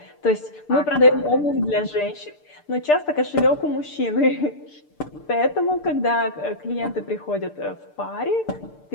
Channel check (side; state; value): right; late; 6.7 ms